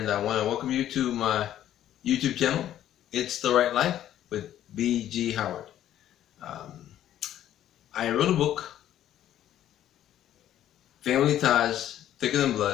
I want to welcome you to my YouTube channel. It's the Right Life with B.G. Howard. Um, I wrote a book, Family Ties Thicker Than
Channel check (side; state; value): right; quieter; 11.8 dB